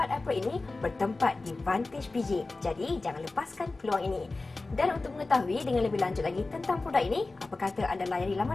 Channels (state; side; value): quieter; right; 3.4 dB